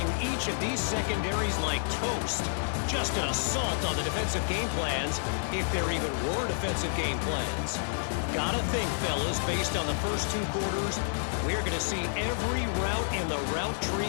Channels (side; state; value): right; silent; 58 dB below the other